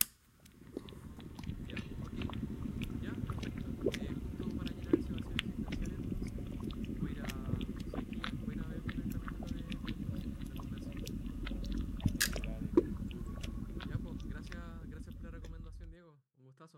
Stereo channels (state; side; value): identical; both; correlation 1.00